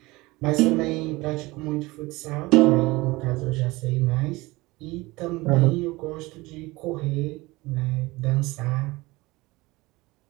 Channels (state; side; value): quieter; left; 21.6 dB